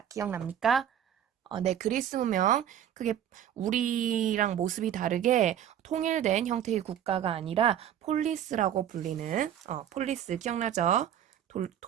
기억납니까? 네, 그리스 문명 그게 우리랑 모습이 다르게 통일된 형태의 국가가 아니라 폴리스라고 불리는 폴리스 기억나죠?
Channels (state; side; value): quieter; left; 10.1 dB